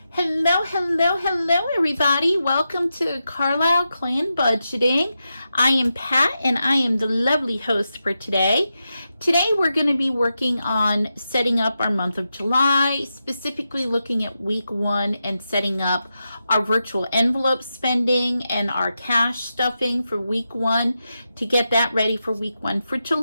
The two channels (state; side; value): inverted; both; correlation -0.88